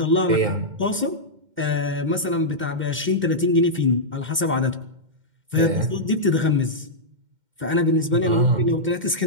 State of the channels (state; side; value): late; left; 2.1 ms